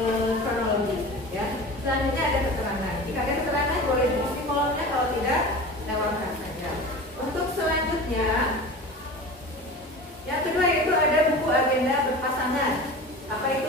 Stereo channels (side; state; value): both; normal; correlation 0.34